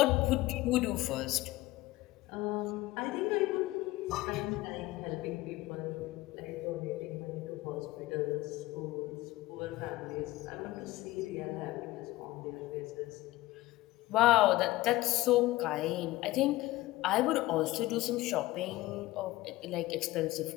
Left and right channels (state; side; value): quieter; right; 18.2 dB